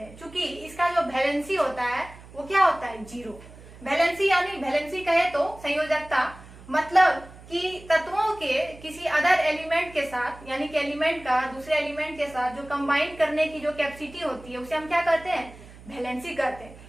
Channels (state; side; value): noise; right; hum, 19 dB below the sound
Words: क्योंकि इसका जो वैलेंसी होता है वो क्या होता है, जीरो। वैलेंसी यानी वैलेंसी कहे तो संयोजकता, मतलब कि तत्वों के किसी अदर एलिमेंट के साथ, यानी कि एलिमेंट का दूसरे एलिमेंट के साथ जो कंबाइन करने की जो कैपेसिटी होती है उसे हम क्या कहते हैं, वैलेंसी कहते हैं।